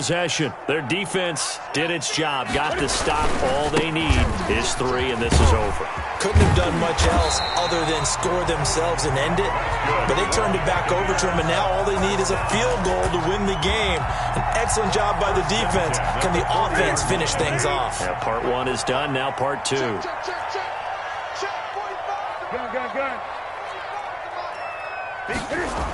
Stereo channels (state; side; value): identical; both; correlation 1.00